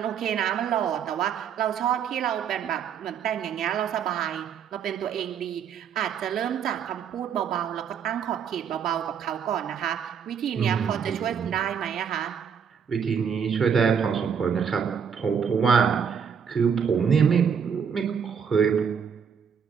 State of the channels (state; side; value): quieter; left; 7.3 dB